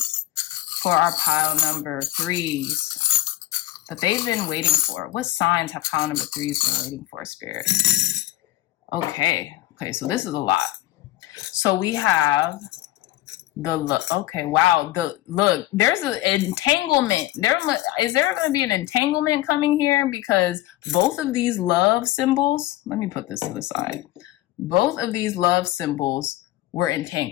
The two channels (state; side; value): quieter; right; 16.0 dB